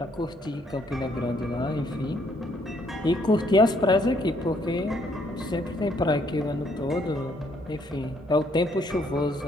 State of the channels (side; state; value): both; normal; correlation 0.68